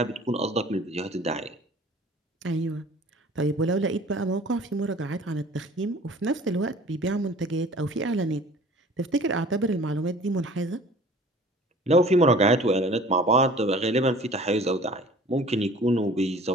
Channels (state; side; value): normal; both; correlation 0.47